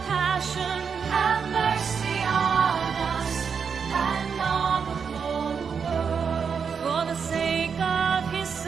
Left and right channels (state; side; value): quieter; left; 6.3 dB